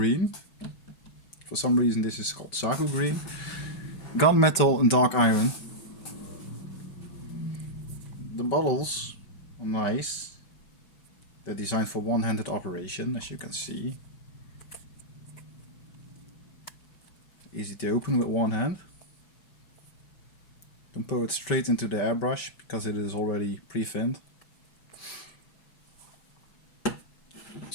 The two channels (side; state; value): right; late; 5.3 ms